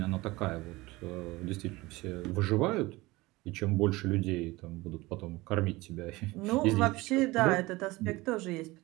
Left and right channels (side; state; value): left; quieter; 20.9 dB